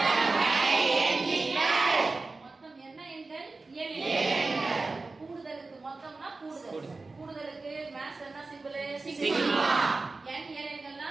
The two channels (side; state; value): left; quieter; 3.6 dB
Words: மொத்தம் என்ன எண்கள்? இயலெண்கள். கூடுதலுக்கு மொத்தம்னா கூடுதல். கூடுதலுக்கு மேத்ஸ் என்ன சிம்பிள்? சிக்மா. n இயலெண்கள்னா